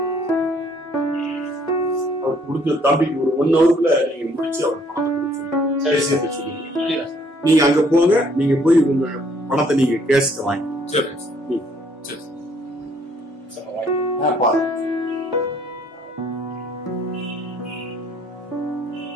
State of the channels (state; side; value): normal; both; correlation 0.63